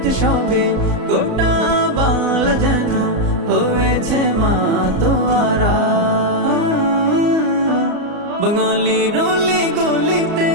গোটা বাংলা যেন হয়েছে মাতোয়ারা। বাঙালির অলি গলিতে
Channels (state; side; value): late; left; 34 ms